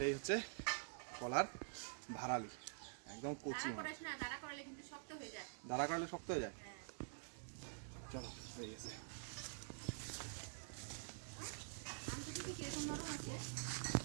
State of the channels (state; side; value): silent; left; digital silence